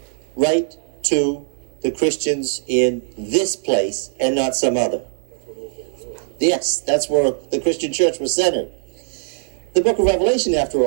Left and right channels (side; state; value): left; silent; digital silence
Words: write to the Christians in this place and not some other? Yes, that's where the Christian church was centered. The book of Revelation, after